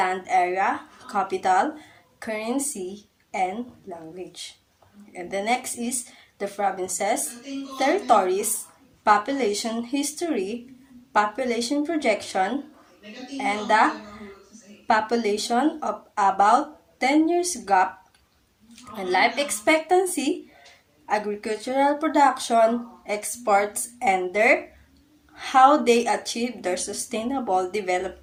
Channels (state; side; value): identical; both; correlation 1.00